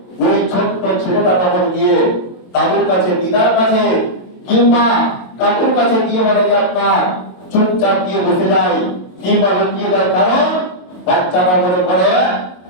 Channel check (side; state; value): right; late; 22 ms